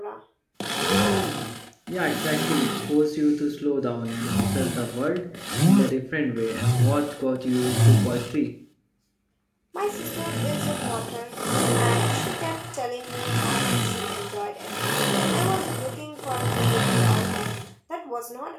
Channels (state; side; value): identical; both; correlation 1.00